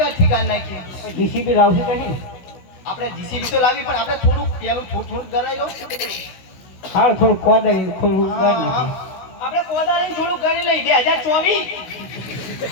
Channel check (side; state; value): right; late; 16 ms